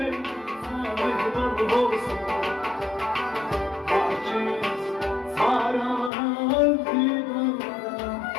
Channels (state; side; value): drops out; right; at 6.1 s